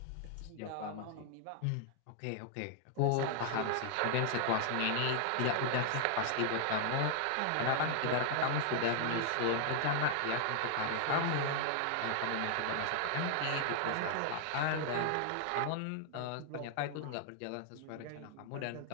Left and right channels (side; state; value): both; different; correlation 0.00